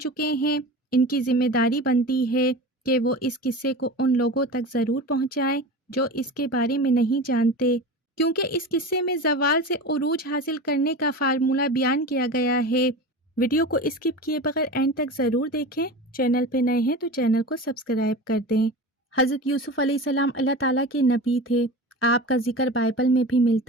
ہیں ان کی ذمہ داری بنتی ہے کہ وہ اس قصے کو ان لوگوں تک ضرور پہنچائیں جو اس کے بارے میں نہیں جانتے، کیونکہ اس قصے میں زوال سے عروج حاصل کرنے کا فارمولہ بیان کیا گیا ہے۔ ویڈیو کو اسکپ کیے بغیر اینڈ تک ضرور دیکھیں۔ چینل پہ نئے ہیں تو چینل کو سبسکرائب کر دیں۔ حضرت یوسف علیہ السلام اللہ تعالیٰ کے نبی تھے۔ آپ کا ذکر بائبل میں بھی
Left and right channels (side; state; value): both; normal; correlation 0.30